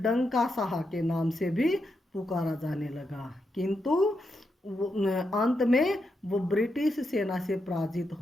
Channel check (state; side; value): normal; both; correlation 0.84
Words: डंका शाह के नाम से भी पुकारा जाने लगा। किंतु अंत में वो ब्रिटिश सेना से पराजित